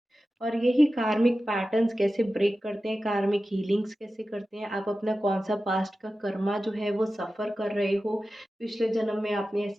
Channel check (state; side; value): normal; both; correlation 0.94